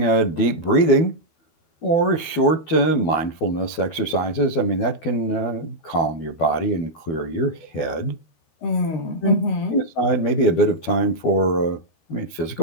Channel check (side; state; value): right; late; 12 ms